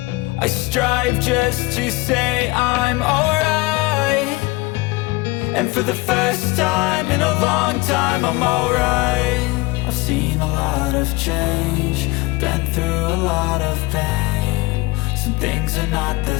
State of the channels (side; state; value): right; quieter; 22.8 dB